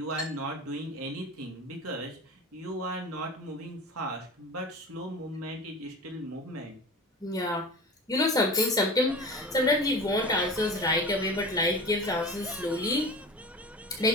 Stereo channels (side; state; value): both; normal; correlation 0.34